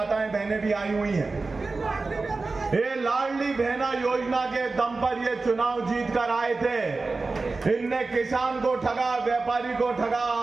बहनें भी आई हुई हैं। ये लाडली बहना योजना के दम पर ये चुनाव जीत कर आए थे। इनने किसान को ठगा, व्यापारी को ठगा,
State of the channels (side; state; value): left; quieter; 3.7 dB